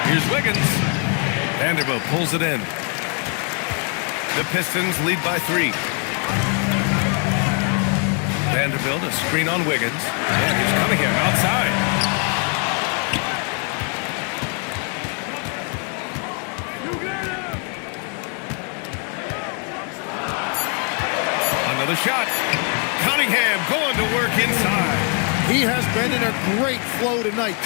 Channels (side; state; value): right; quieter; 40.0 dB